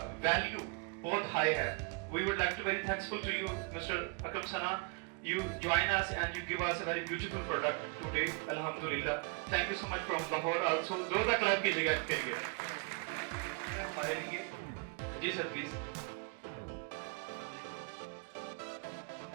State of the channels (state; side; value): quieter; left; 32.3 dB